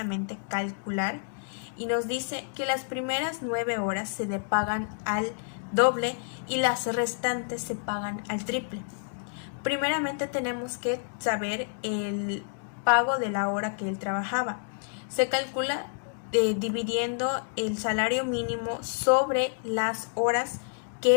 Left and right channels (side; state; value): right; silent; digital silence